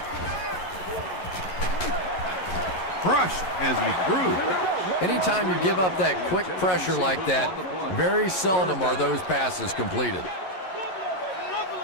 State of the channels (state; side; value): late; right; 11 ms